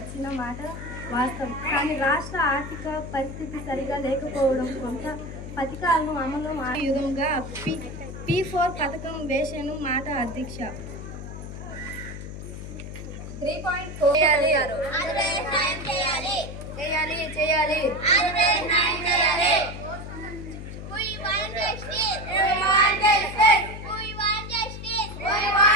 మాట వాస్తవం. కానీ రాష్ట్ర ఆర్థిక పరిస్థితి సరిగా లేకపోవడం కొంత పథకాలను అమలు యుగంగా P4 పథకం వేసేను మాట అధ్యక్ష. 3.4 చేయాలి.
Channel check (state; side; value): noise; left; hum, 9 dB below the sound